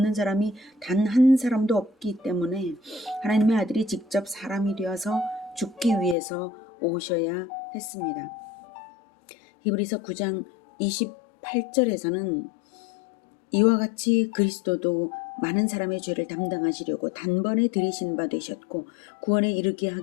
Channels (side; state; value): right; drops out; at 6.2 s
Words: 사람이 단 한 사람도 없기 때문에 하나님의 아들이 직접 사람이 되어서 죽기 위해서 오셔야 했습니다. 히브리서 9장 28절에서는 이와 같이 그리스도도 많은 사람의 죄를 담당하시려고 단번에 들이신 바 되셨고 구원에 이르게